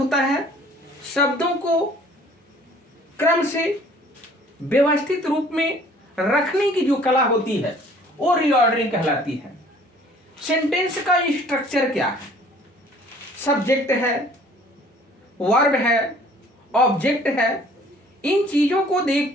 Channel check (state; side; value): normal; both; correlation 0.54